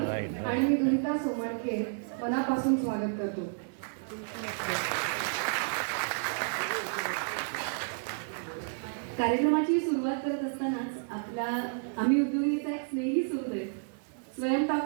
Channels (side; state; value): left; silent; digital silence